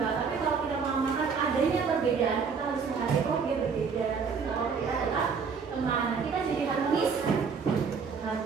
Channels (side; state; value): left; quieter; 5.7 dB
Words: Tapi kalau kita mau makan adanya perbedaan, kita harus menghargai kok dia berbeda. Tapi kalau kita adalah teman, kita jadi harmonis.